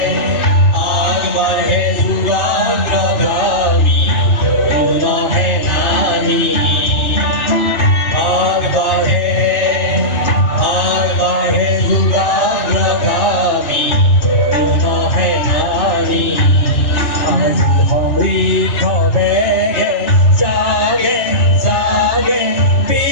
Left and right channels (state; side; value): late; right; 3.3 ms